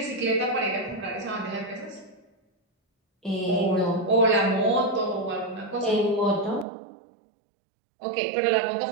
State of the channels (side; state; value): left; drops out; at 6.7 s